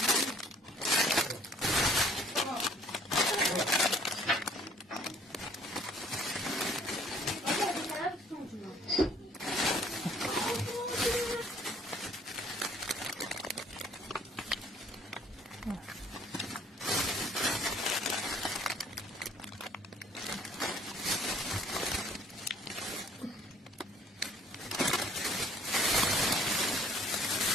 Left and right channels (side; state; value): both; normal; correlation 0.58